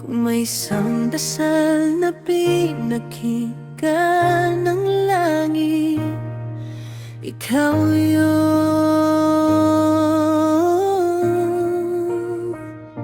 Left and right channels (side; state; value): both; identical; correlation 1.00